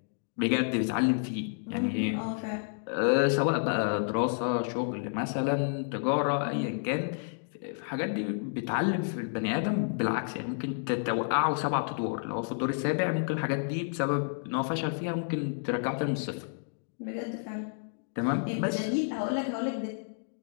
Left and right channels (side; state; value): right; silent; digital silence